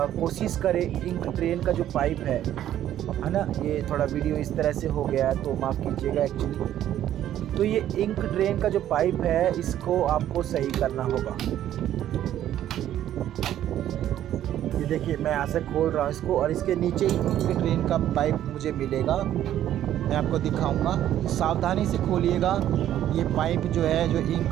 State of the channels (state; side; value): quieter; left; 11.8 dB